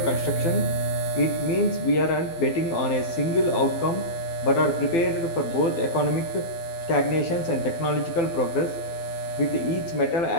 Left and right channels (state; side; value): late; right; 12 ms